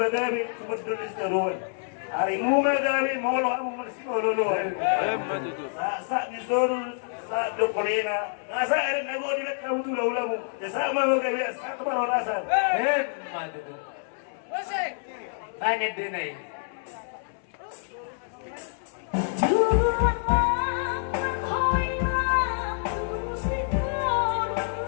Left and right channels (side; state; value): right; silent; 60 dB below the other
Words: tumagdulis na ruwan. Ari mo magagabi, molo ako magsipoluluhan. Sa ni Soro, sa Dokorina. Nasa arin ako, dilak ka mutula-ula mo. Sa magagabi, sa kamaranasan. Madudu. Tayo nagdunay.